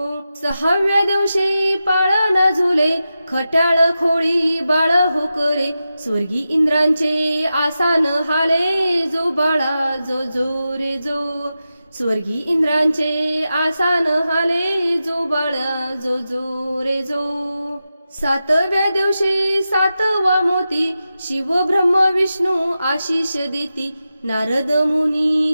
सहाव्या दिवशी पाळणा झुले खट्याळ खोळी बाळ हो करे। स्वर्गी इंद्रांचे आसान हाले जो बाळा जो जो रे जो। स्वर्गी इंद्रांचे आसान हाले जो बाळा जो जो रे जो। सातव्या दिवशी सातवा मोती शिव ब्रह्म विष्णू आशीष देती। नारद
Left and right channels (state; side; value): inverted; both; correlation -0.91